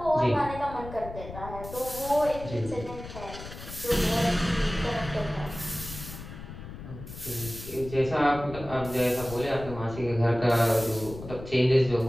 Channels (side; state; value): left; noise; rumble, 12 dB below the sound